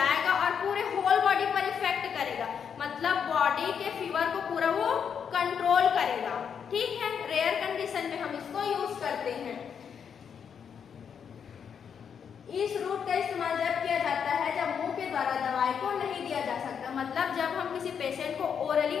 और पूरे होल बॉडी पर इफेक्ट करेगा, मतलब बॉडी के फीवर को पूरा वो कंट्रोल करेगा। ठीक है, रेयर कंडीशन में हम इसको यूज करते हैं। इस रूट का इस्तेमाल जब किया जाता है जब मुंह के द्वारा दवाई को नहीं दिया जा सकता, मतलब जब हम किसी पेशेंट को ओरली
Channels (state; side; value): quieter; right; 7.3 dB